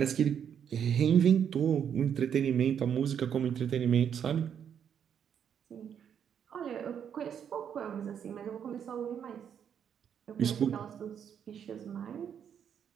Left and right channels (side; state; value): left; quieter; 8.3 dB